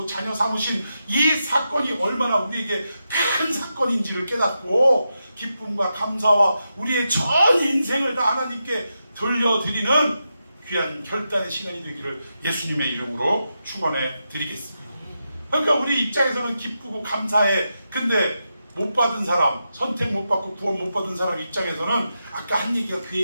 자녀 삼으신 이 사건이 얼마나 우리에게 큰 사건인지를 깨닫고 기쁨과 감사와 우리의 전 인생을 다 하나님께 돌려드리는 귀한 결단의 시간이 되기를 예수님의 이름으로 축원해 드리겠습니다. 그러니까 우리 입장에서는 기쁘고 감사해. 근데 못 받은 사람, 선택 못 받고 구원 못 받은 사람 입장에서는 아까 한 얘기가 그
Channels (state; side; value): inverted; both; correlation -0.87